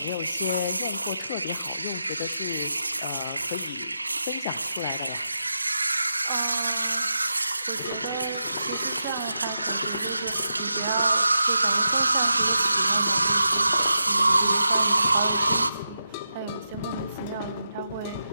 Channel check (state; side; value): inverted; both; correlation -0.86